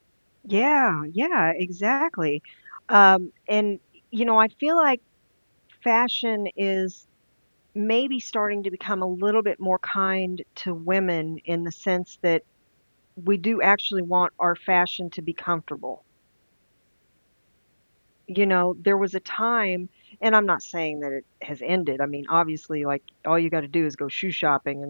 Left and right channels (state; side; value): inverted; both; correlation -1.00